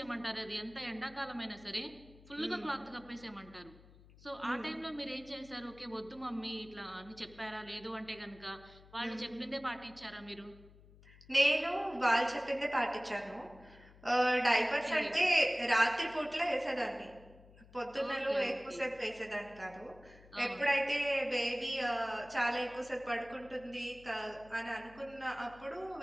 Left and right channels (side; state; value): left; noise; hum, 23 dB below the sound